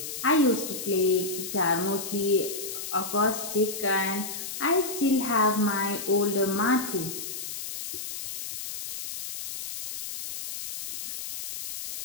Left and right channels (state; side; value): noise; left; hiss, 7 dB below the sound